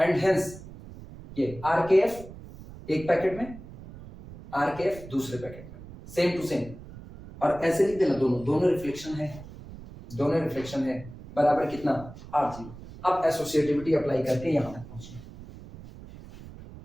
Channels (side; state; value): right; noise; rumble, 16 dB below the sound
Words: hence ये RKF एक पैकेट में, RKF दूसरे पैकेट में, सेम टू सेम। और ऐसे लिख देना, दोनों रिफ्लेक्शन है, दोनों रिफ्लेक्शन है बराबर कितना, r जीरो। अब एसोसिएटिविटी अप्लाई करके यहां तक पहुंचना,